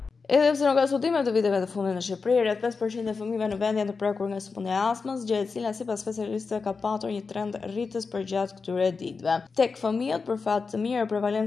Edhe pse nuk ka studime të viteve të fundit në Shqipëri, rreth 5% e fëmijëve në vend janë të prekur nga sëmundja e astmës, gjë e cila sipas specialistëve ka patur një trend rritës përgjatë këtyre ditëve. Tek fëmijët, për fat të mirë,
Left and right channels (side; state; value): right; quieter; 4.7 dB